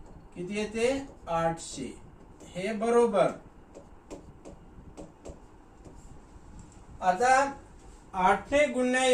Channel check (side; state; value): both; identical; correlation 1.00